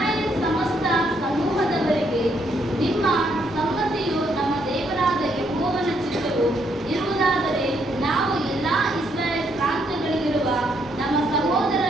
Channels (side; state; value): both; normal; correlation 0.73